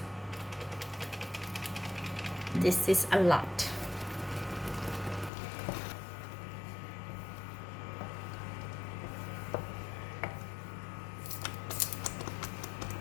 This is a lot.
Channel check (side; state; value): right; drops out; at 5.3 s